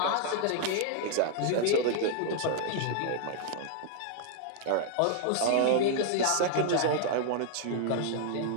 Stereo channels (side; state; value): both; different; correlation -0.01